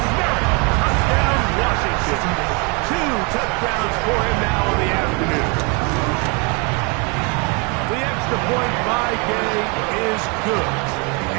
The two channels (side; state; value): left; quieter; 31.4 dB